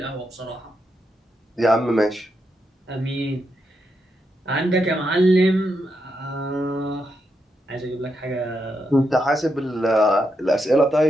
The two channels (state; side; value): normal; both; correlation 0.83